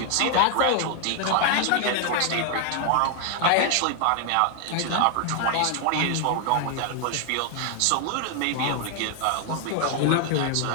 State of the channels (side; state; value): both; different; correlation 0.00